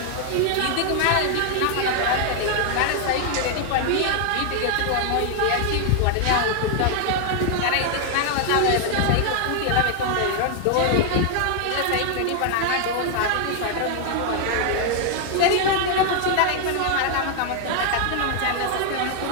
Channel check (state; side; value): different; both; correlation 0.00